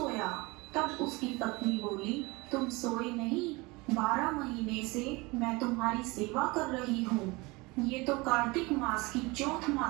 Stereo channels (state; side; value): quieter; left; 24.2 dB